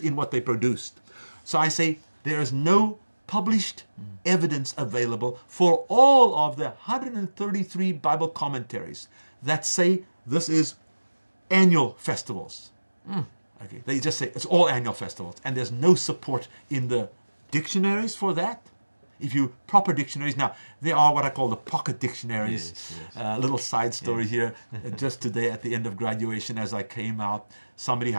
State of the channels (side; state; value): both; inverted; correlation -1.00